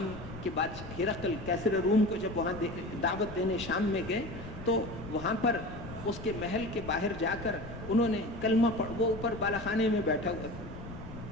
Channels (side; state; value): left; noise; rumble, 12 dB below the sound